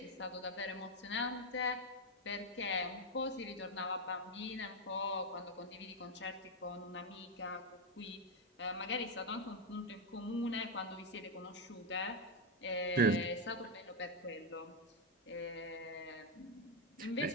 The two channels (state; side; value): normal; both; correlation 0.05